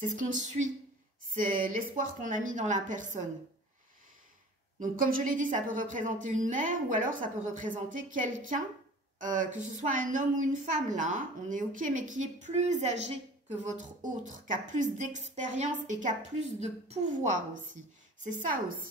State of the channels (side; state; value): both; normal; correlation 0.43